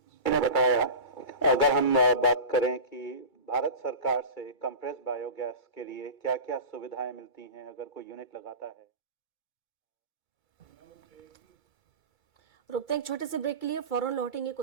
ने बताया, अगर हम बात करें कि भारत सरकार से कंप्रेस बायोगैस के लिए क्या क्या सुविधाएं मिलती हैं अगर कोई यूनिट लगाता है। रुकते हैं एक छोटे से ब्रेक के लिए, फौरन लौटेंगे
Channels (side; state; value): left; late; 2.3 ms